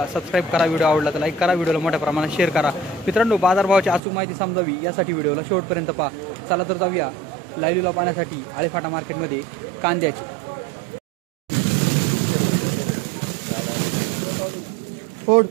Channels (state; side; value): drops out; left; at 4.0 s